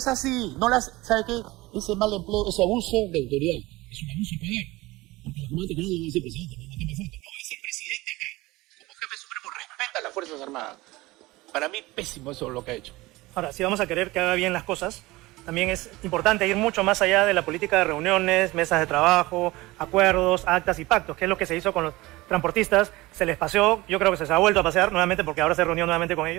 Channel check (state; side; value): quieter; left; 20.3 dB